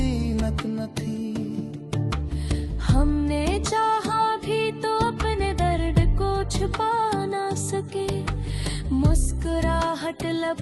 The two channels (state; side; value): identical; both; correlation 1.00